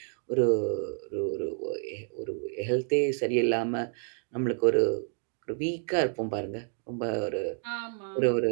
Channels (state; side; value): silent; left; digital silence